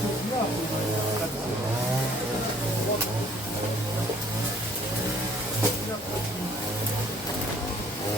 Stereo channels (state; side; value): normal; both; correlation 0.57